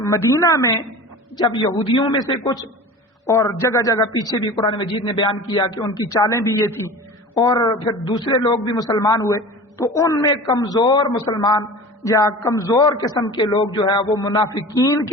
مدینہ میں جب یہودیوں میں سے کچھ، اور جگہ جگہ پیچھے بھی قرآن مجید نے بیان کیا کہ ان کی چالیں بھی یہ تھی، اور پھر دوسرے لوگ بھی مسلمان ہوئے، تو ان میں کمزور مسلمان یا کمزور قسم کے لوگ جو ہے وہ منافقین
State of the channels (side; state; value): both; normal; correlation 0.36